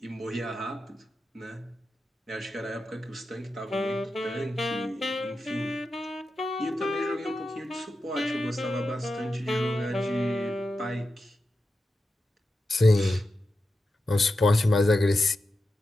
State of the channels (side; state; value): both; normal; correlation 0.90